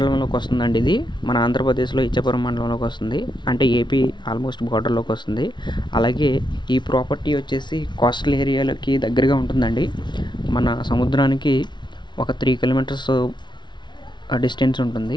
వస్తుందండి. ఇది మన ఆంధ్రప్రదేశ్లో ఇచ్చాపురం మండలంలోకి వస్తుంది, అంటే ఏపీ ఆల్మోస్ట్ బార్డర్లోకి వస్తుంది. అలాగే ఈ ప్రాపర్టీ వచ్చేసి కోస్టల్ ఏరియాలకి దగ్గరగా ఉంటుందండి. మన సముద్రానికి ఒక 3 కిలోమీటర్స్ డిస్టెన్స్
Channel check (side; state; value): right; late; 0.22 ms